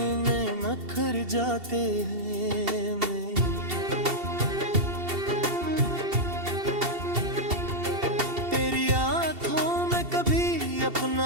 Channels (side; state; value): left; late; 2.7 ms